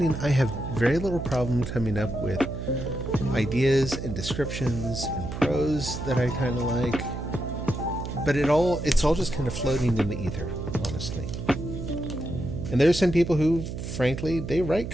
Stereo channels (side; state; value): right; noise; hum, 6 dB below the sound